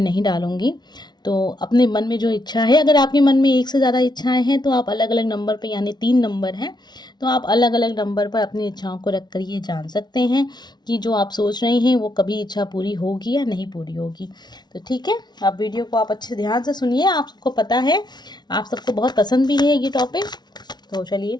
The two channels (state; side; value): late; right; 0.20 ms